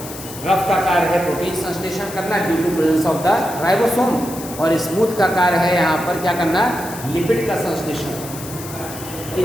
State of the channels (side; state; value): left; noise; hiss, 13 dB below the sound